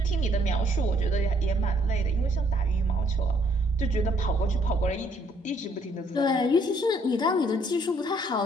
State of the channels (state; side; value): normal; both; correlation 0.66